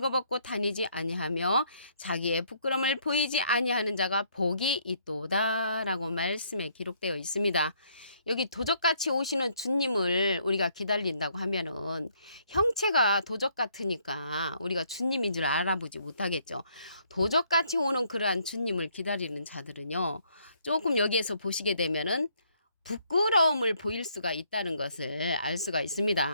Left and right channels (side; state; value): both; inverted; correlation -0.68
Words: 다니지 아니하며 자기의 부끄러움을 보이지 아니하는 자가 복이 있도다 라고 말씀에 기록되어 있습니다. 여기 도적같이 오시는 주님을 우리가 기다린다고 하면은 형체가 도적 같으니까 우리가 주님인 줄 알아보지 못하겠죠. 도적같이 오는 그러한 주님을 기다리는 자들은요, 조금 여기에서 보시게 되면은 부끄러움을 보일 수가 있다는 것을 알 수가